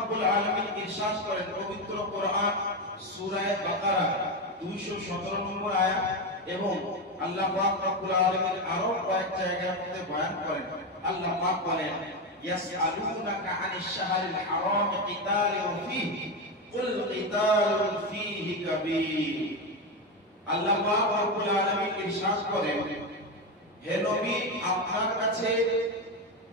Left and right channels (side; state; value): both; normal; correlation 0.13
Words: আলামিন ইরশাদ করেন পবিত্র কোরআন সূরা বাকারা 217 নম্বর আয়াত, এবং আল্লাহ পাক রব্বুল আলামিন আরো কয়েক জায়গার মধ্যে বয়ান করেন। আল্লাহ পাক বলেন ইয়াসআলুনাকা আনিশ শাহরিল হারাম কিতালুন ফীহি কুল কিতালুন ফীহি কাবীর। আল্লাহ পাক রব্বুল আলামিন ইরশাদ করেন, হে নবী, আপনার কাছে